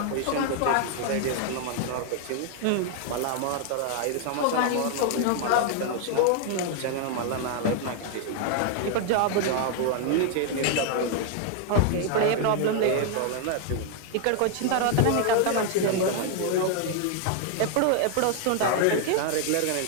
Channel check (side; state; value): both; different; correlation 0.00